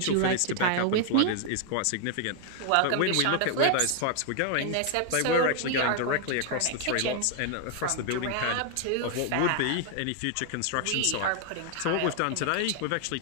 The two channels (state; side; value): different; both; correlation 0.00